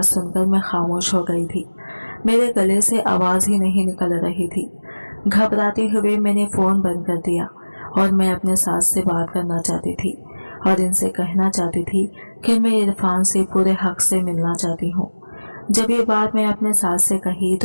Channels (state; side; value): inverted; both; correlation -1.00